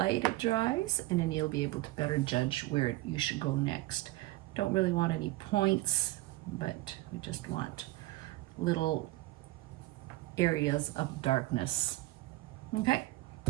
it dries, and then you'll be able to better judge where you should go next. Don't really want any points, but we just want little areas of darkness. Okay.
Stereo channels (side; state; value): left; quieter; 19.0 dB